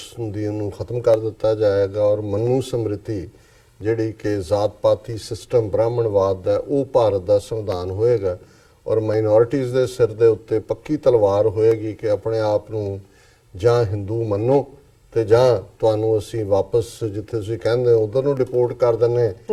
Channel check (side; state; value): both; identical; correlation 1.00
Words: ਦੀ ਨੂੰ ਖਤਮ ਕਰ ਦਿੱਤਾ ਜਾਏਗਾ ਔਰ ਮਨੂ ਸਮ੍ਰਿਤੀ ਜਿਹੜੀ ਕਿ ਜ਼ਾਤ ਪਾਤੀ ਸਿਸਟਮ ਬ੍ਰਾਹਮਣਵਾਦ ਦਾ ਉਹ ਭਾਰਤ ਦਾ ਸੰਵਿਧਾਨ ਹੋਏਗਾ ਔਰ ਮਾਈਨੋਰਿਟੀਜ਼ ਦੇ ਸਿਰ ਦੇ ਉੱਤੇ ਪੱਕੀ ਤਲਵਾਰ ਹੋਏਗੀ ਕਿ ਆਪਣੇ ਆਪ ਨੂੰ ਜਾਂ ਹਿੰਦੂ ਮੰਨੋ ਤੇ ਜਾਂ ਤੁਹਾਨੂੰ ਅਸੀਂ ਵਾਪਸ ਜਿੱਥੇ ਤੁਸੀਂ ਕਹਿੰਦੇ ਹੋ ਉਧਰ ਨੂੰ ਰਿਪੋਰਟ ਕਰ ਦਿੰਨੇ